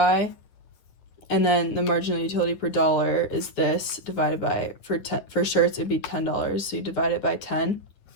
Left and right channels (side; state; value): right; late; 9.9 ms